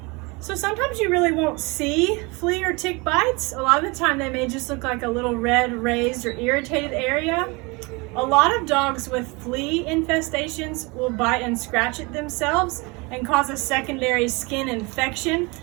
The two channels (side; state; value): left; quieter; 27.0 dB